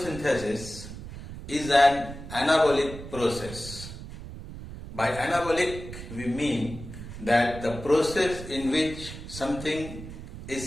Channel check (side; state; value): right; noise; rumble, 11 dB below the sound